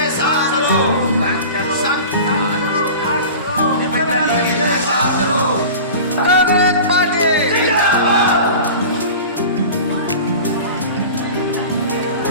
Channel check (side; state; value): both; inverted; correlation -0.36